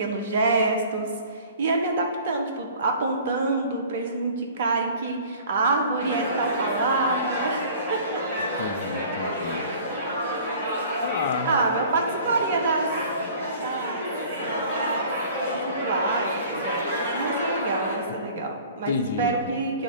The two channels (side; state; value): both; inverted; correlation -0.47